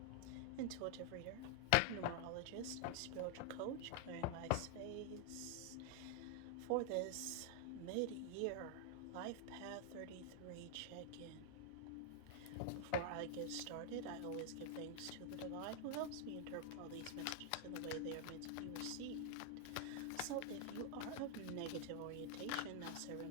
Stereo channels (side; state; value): both; different; correlation 0.00